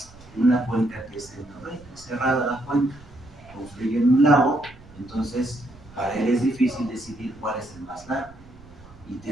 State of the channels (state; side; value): noise; right; rumble, 22 dB below the sound